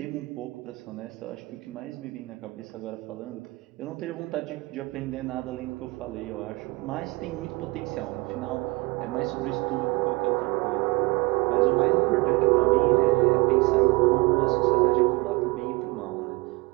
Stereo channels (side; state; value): left; quieter; 24.8 dB